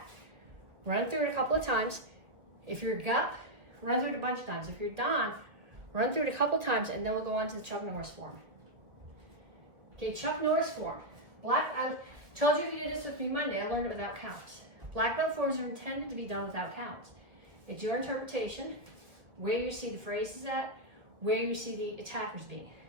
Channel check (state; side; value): late; left; 1.5 ms